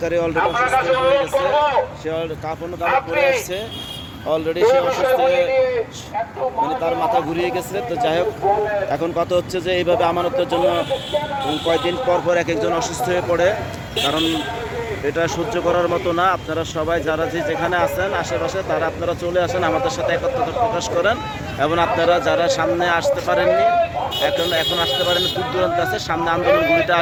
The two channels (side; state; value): both; identical; correlation 1.00